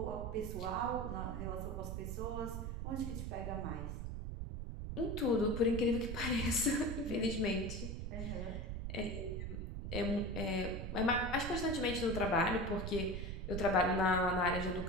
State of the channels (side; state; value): right; noise; rumble, 4 dB below the sound